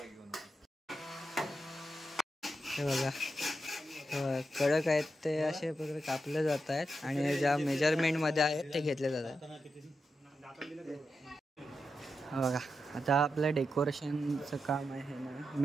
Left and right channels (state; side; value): normal; both; correlation 0.87